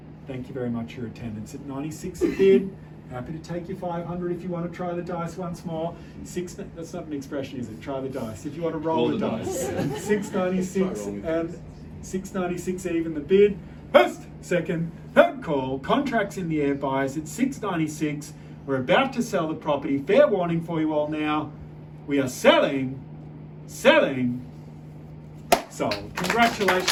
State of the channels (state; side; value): identical; both; correlation 1.00